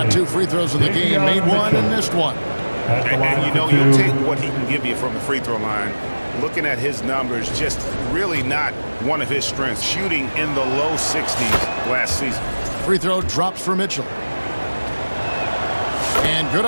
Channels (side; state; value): both; inverted; correlation -1.00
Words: 2 free throws in the game, made 1 and missed 1. And you know, you'll take what he can give you from the free throw line. Looking at his numbers, just really not one of his strengths. Shooting in the low 60s last season. Free throw drops for Mitchell. And good